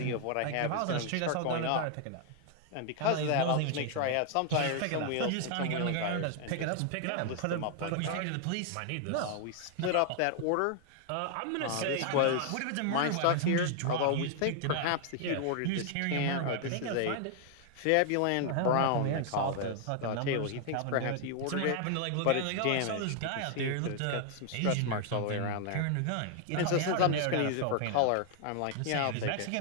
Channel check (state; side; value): different; both; correlation 0.00